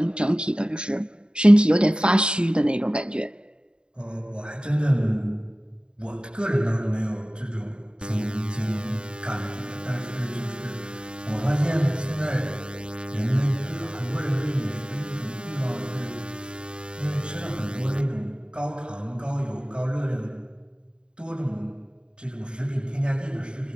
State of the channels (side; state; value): left; late; 0.051 ms